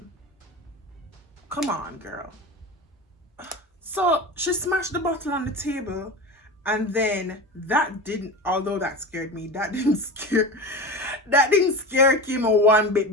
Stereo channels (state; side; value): normal; both; correlation 0.28